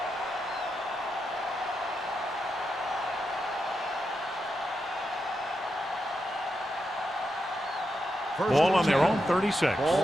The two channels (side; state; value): both; normal; correlation 0.86